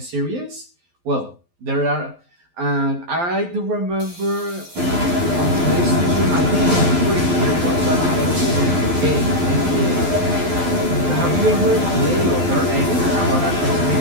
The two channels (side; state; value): left; late; 12 ms